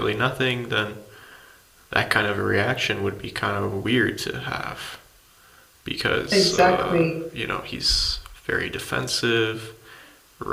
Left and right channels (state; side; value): identical; both; correlation 1.00